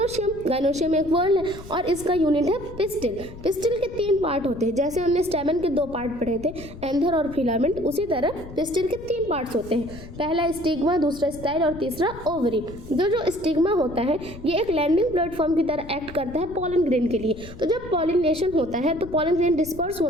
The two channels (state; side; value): noise; left; rumble, 15 dB below the sound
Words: गाइनोशियम एक वर्ड है और इसका यूनिट है पिस्टिल। पिस्टिल के 3 पार्ट होते हैं। जैसे हमने स्टेमन के 2 पार्ट पढ़े थे, एंथर और फिलामेंट, उसी तरह पिस्टिल के 3 पार्ट्स होते हैं। पहला स्टिग्मा, दूसरा स्टाइल और तीसरा ओवरी। जो स्टिग्मा होता है ये एक लैंडिंग प्लेटफॉर्म की तरह एक्ट करता है पॉलन ग्रेन के लिए। तो जब पॉलिनेशन होता है तो पॉलन ग्रेन डिस्पर्स